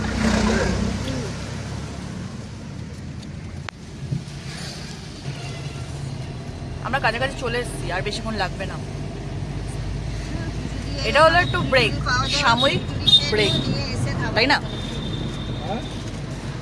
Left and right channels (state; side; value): identical; both; correlation 1.00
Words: আমরা কাছাকাছি চলে এসেছি, আর বেশিক্ষণ লাগবে না। এটা হলো একটু ব্রেক, সাময়িক ব্রেক, তাই না?